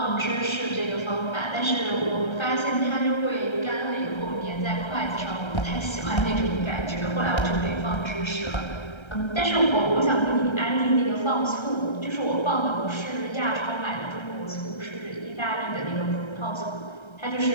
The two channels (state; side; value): late; right; 1.3 ms